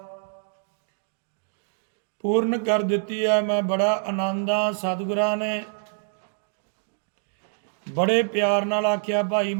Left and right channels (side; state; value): left; silent; digital silence